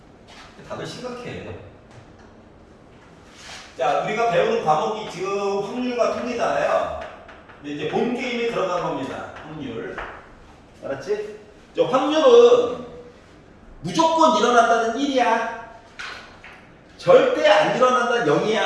다들 심각해. 자, 우리가 배우는 과목이 지금 확률과 통계잖아요. 근데 이제 본 게임에 들어간 겁니다. 확률. 알았지? 저 확률은 무조건 일어난다는 1이야. 절대 안 일어난다는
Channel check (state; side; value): identical; both; correlation 1.00